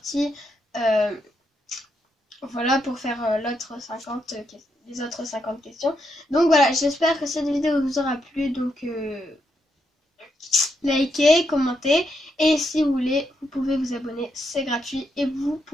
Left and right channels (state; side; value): normal; both; correlation 0.80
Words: Voilà pour faire les autres 50 questions. Donc voilà, j'espère que cette vidéo vous aura plu. Donc likez, commentez et si vous voulez, vous pouvez vous abonner, c'est gratuit et vous